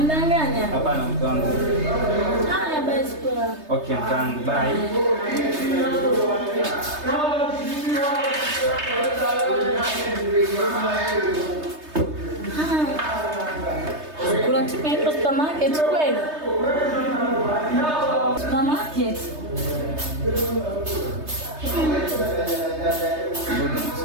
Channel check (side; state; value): left; late; 3.3 ms